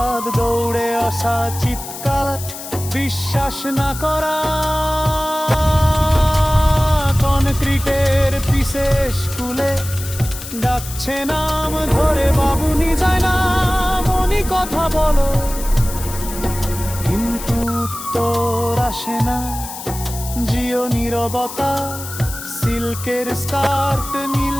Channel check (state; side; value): noise; left; hiss, 11 dB below the sound